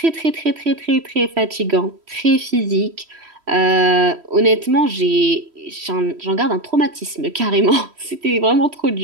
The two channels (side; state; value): left; late; 3.1 ms